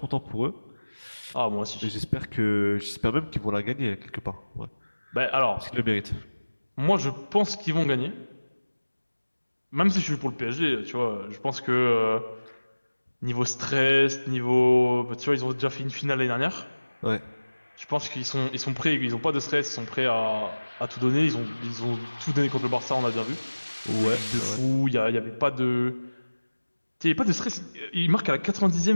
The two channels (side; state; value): both; inverted; correlation -1.00